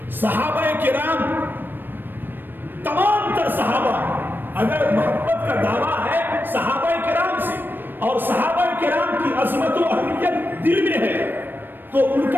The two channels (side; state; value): left; late; 0.094 ms